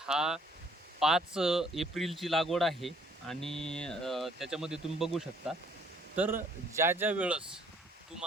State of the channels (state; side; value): normal; both; correlation 0.62